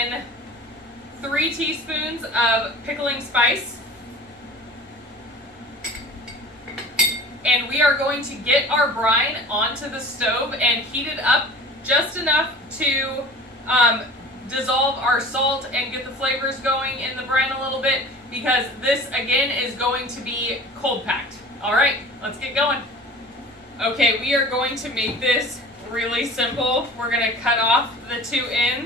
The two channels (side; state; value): both; normal; correlation 0.41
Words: 3 teaspoons of pickling spice. And we are going to get our brine onto the stove and heat it up just enough to dissolve our salt and get the flavors going in the brine a little bit, because this again is going to be cold packed. All right, let's get going. Okay, we are going to make this really simple. We're going to cut off the 2